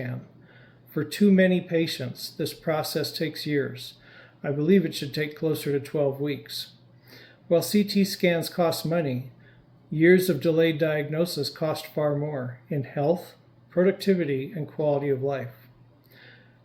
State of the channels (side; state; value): both; identical; correlation 1.00